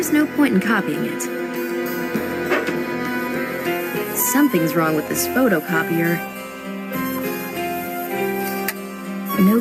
no point in copying it. Something's wrong with this photocopier. No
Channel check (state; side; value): identical; both; correlation 1.00